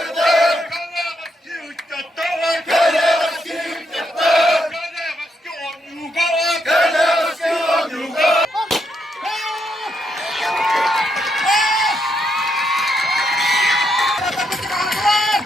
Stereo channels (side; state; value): both; normal; correlation 0.79